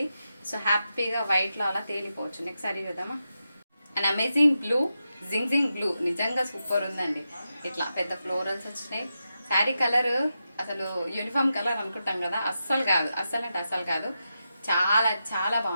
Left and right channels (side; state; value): both; inverted; correlation -0.88